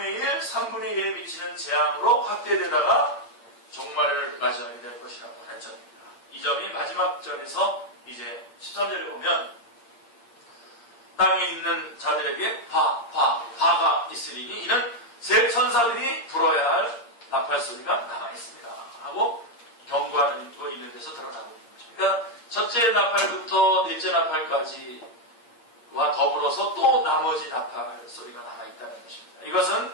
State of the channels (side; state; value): right; late; 8.7 ms